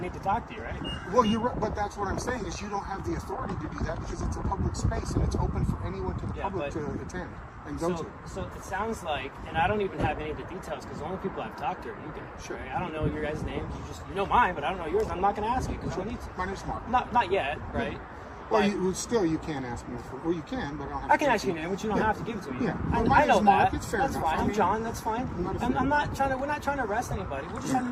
need to talk to you, right? Well, you're right, but that's what I'm saying is you don't have the authority to do that because it's a public space and it's open for anyone to the public to attend and go to. So it sounds like, and I don't even have any of the details because the only people I've talked to are you guys. Sure. Right? I don't know your guys' names. You know mine, but I don't know yours. I'm not going to ask you because I don't need to. My name's Mark. Not yet, right? Well, you can ask me for. Well, you can, but I don't have. I can ask you your name, but you don't have to give it to me. Yeah. I, Well, I know mine is Mark. that. It's fair That's enough. fine. I I'm mean, John. That's fine. I'm not We're not trying to arrest anybody. We're just having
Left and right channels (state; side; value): identical; both; correlation 1.00